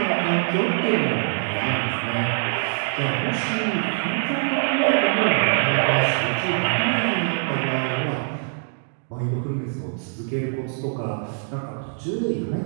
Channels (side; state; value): left; silent; digital silence